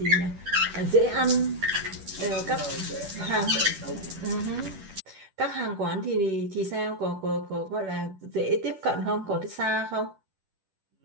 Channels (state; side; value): late; left; 10 ms